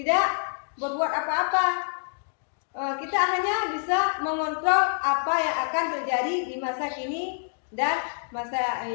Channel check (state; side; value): silent; right; digital silence